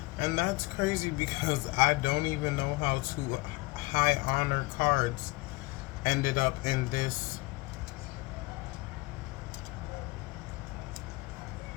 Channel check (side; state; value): right; quieter; 23.5 dB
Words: And that's crazy because I don't even know how to high honor cards ended up in this